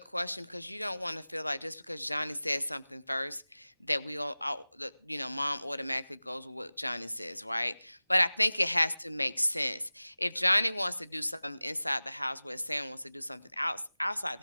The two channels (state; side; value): inverted; both; correlation -0.98